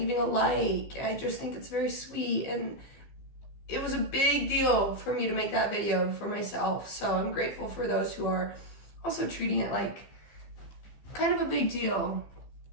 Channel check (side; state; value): right; late; 14 ms